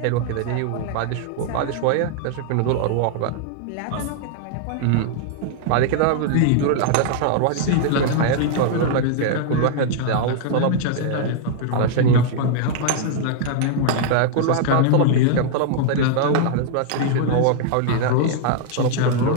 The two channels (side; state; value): both; different; correlation 0.00